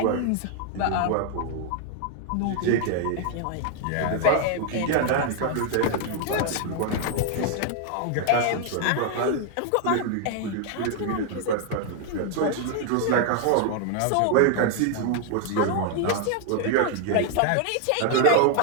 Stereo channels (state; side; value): different; both; correlation 0.00